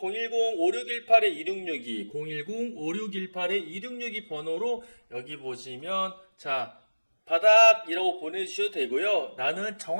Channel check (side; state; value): both; inverted; correlation -1.00